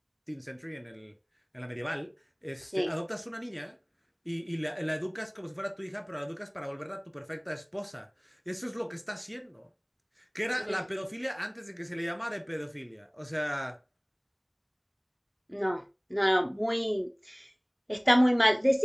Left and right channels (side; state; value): both; identical; correlation 1.00